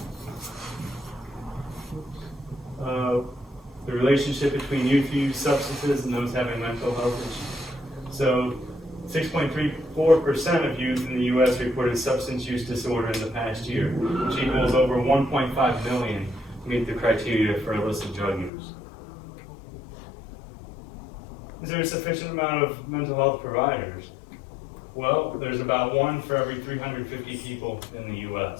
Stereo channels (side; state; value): right; drops out; at 18.5 s